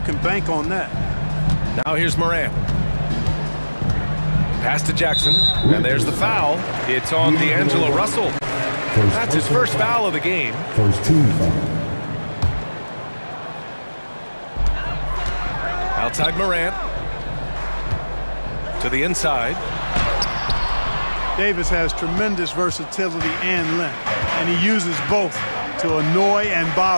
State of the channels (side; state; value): both; inverted; correlation -1.00